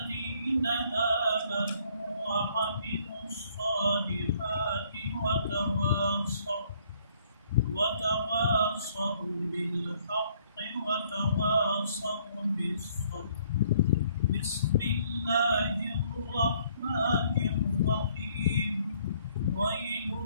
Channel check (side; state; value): both; inverted; correlation -0.63